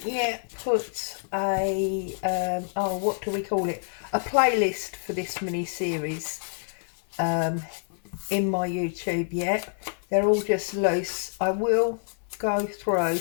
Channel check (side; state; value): right; silent; 57 dB below the other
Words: yet put a, oh what do we call it, a playlist for this mini series in my YouTube yet. They're all just loose. I will go through